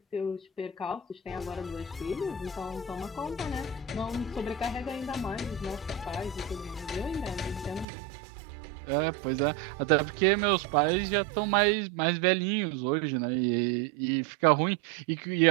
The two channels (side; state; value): left; drops out; at 7.9 s